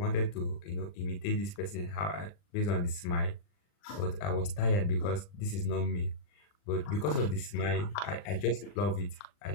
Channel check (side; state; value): right; late; 40 ms